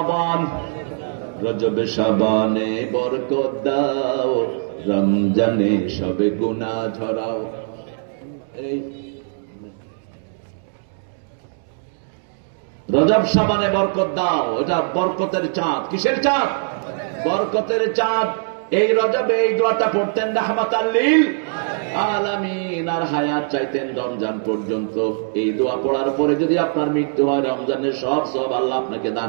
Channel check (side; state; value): left; silent; digital silence